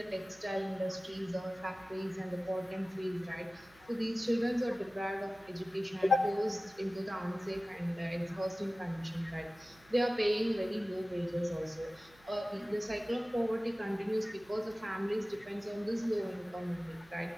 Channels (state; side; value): noise; right; hum, 28 dB below the sound